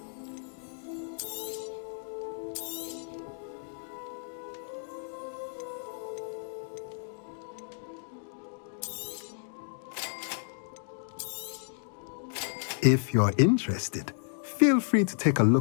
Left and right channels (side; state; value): right; silent; digital silence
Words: If you're interested, feel free to take a